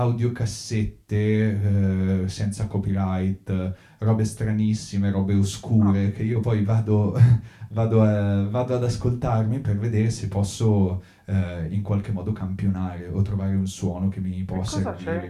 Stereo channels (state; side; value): identical; both; correlation 1.00